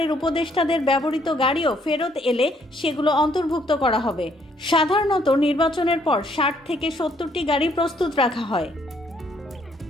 উপদেষ্টাদের ব্যবহৃত গাড়িও ফেরত এলে সেগুলো অন্তর্ভুক্ত করা হবে। সাধারণত নির্বাচনের পর ৬০ থেকে ৭০টি গাড়ি প্রস্তুত রাখা হয়।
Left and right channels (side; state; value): both; normal; correlation 0.68